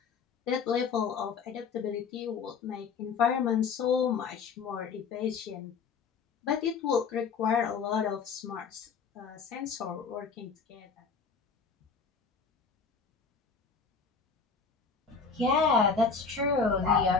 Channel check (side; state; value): right; quieter; 5.5 dB